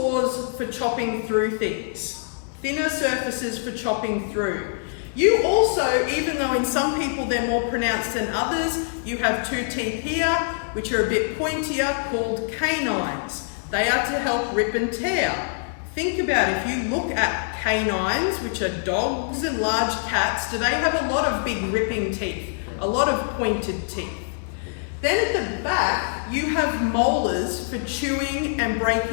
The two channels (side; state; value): right; silent; digital silence